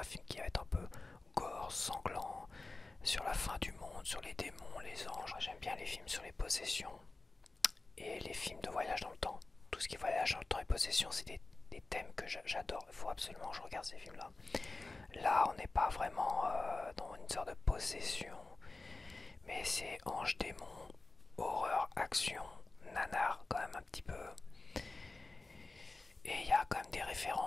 film qui va être un peu gore, sanglant, sur la fin du monde, sur les démons, les anges. J'aime bien les films sur les possessions et les films de voyage dans le temps. Tout ce qui est voyage dans le temps et possession, c'est des thèmes que j'adore. Il faut absolument que je regarde ces films-là. Là, on n'est pas vraiment dans une sorte de possession, mais c'est ange, démon, horreur, action, nanar, quand même un petit peu. Et il y a quand même des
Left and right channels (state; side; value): quieter; right; 3.3 dB